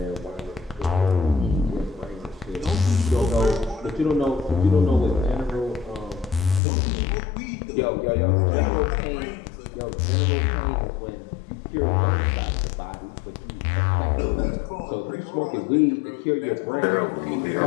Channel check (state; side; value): drops out; right; at 6.6 s